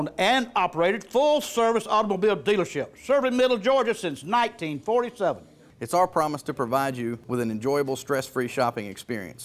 and operated full-service automobile dealership, serving Middle Georgia since 1947. It's our promise to provide you with an enjoyable, stress-free shopping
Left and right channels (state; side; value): identical; both; correlation 1.00